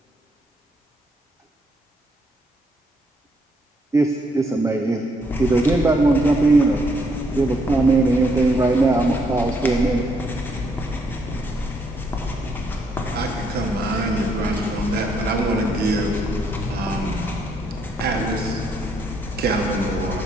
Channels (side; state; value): both; normal; correlation 0.73